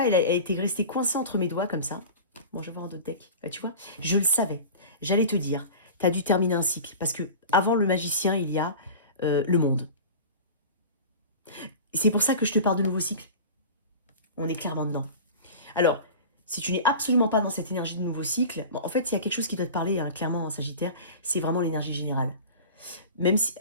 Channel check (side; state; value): both; inverted; correlation -0.35